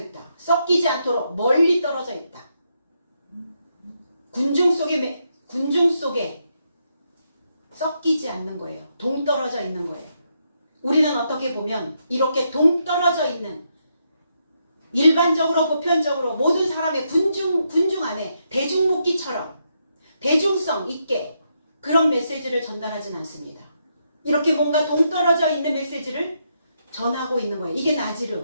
썩기지 않도록 멀리 떨어져 있다. 군중 속에 썩기지 않는 거예요. 동떨어져 있는 거예요. 우리는 어떻게 보면 이렇게 동떨어져 있는, 일반적으로 보편적으로 모든 사람의 군중 안에 대중목기처럼 대중성 있게 그런 메시지를 전달하진 않습니다. 이렇게 뭔가 동떨어져 있는 메시지를 전하고 있는 거예요. 이게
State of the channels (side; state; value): both; inverted; correlation -0.80